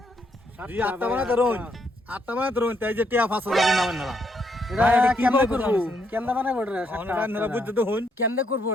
জি 8টা বানাতে রোন 8টা বানাতে রোন তাই যে টিয়া 5,000 নামেন না এটা কেমনে করব? কেমনে বানাবো এটা? আপনারা বুঝতে তো হন কেমনে করবো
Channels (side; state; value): both; normal; correlation 0.74